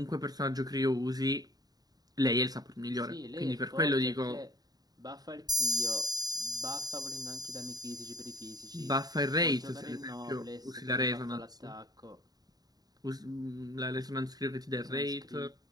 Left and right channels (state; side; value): late; left; 0.18 ms